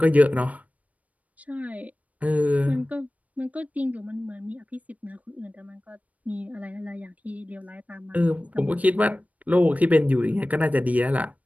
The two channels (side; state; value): left; late; 0.070 ms